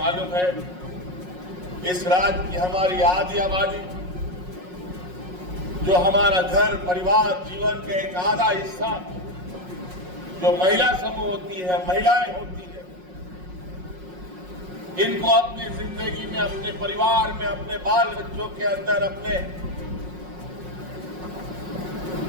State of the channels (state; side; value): late; left; 5.5 ms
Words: है, इस राज्य की हमारी आधी आबादी, जो हमारा घर परिवार जीवन के एक आधा हिस्सा जो महिला समूह होती है, महिलाएं होती है, इनको अपनी जिंदगी में, अपने परिवार में, अपने बाल बच्चों के अंदर, अपने